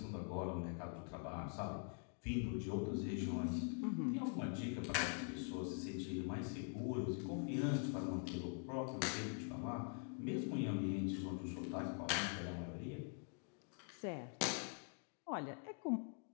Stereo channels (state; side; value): quieter; right; 38.6 dB